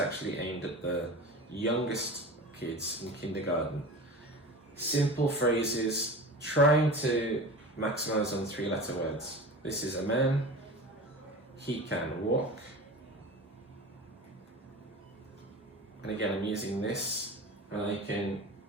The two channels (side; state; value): both; normal; correlation 0.33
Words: aimed at the youngest kids in kindergarten. Simple phrases, trying to maximize on 3-letter words. This is a man. He can walk. And again, I'm using this, and I can,